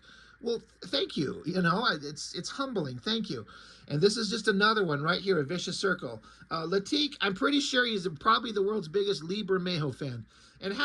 "Well, thank you. It's humbling. Thank you." And this is just another one right here, a vicious circle. Latik, I'm pretty sure he's probably the world's biggest Lee Bermejo fan. And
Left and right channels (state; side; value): identical; both; correlation 1.00